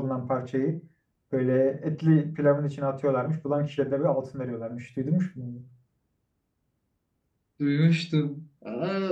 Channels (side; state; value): both; identical; correlation 1.00